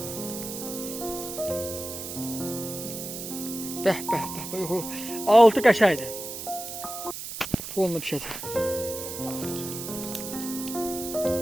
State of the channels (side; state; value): right; noise; hiss, 8 dB below the sound